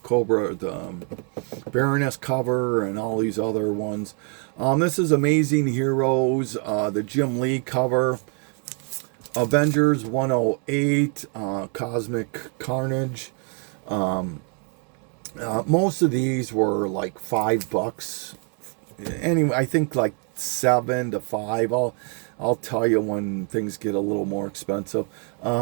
Cobra, the Baroness cover, and all these other ones. This is Amazing Heroes, the Jim Lee cover. Avengers 108, Cosmic Carnage. Most of these were like $5. Anyway, I think like $7 to $5. I'll tell you when things get a little more expensive.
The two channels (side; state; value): left; quieter; 39.8 dB